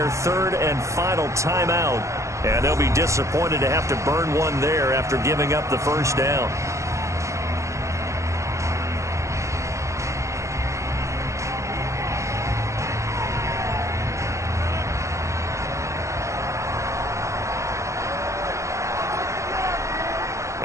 3rd and final timeout. And they'll be disappointed to have to burn one there after giving up the 1st down.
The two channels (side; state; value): left; late; 0.15 ms